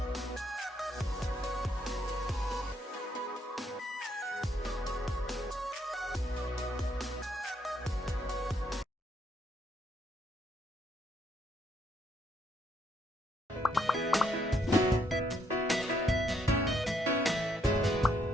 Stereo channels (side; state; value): both; normal; correlation 0.72